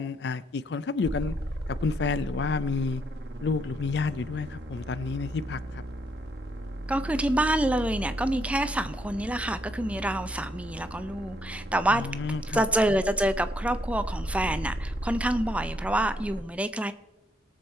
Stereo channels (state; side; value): normal; both; correlation 0.73